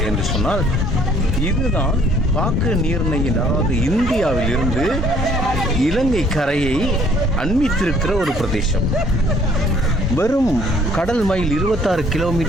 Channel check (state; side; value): normal; both; correlation 0.60